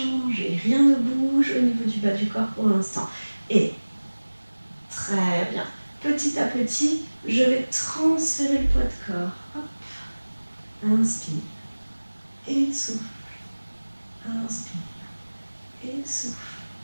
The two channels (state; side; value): inverted; both; correlation -1.00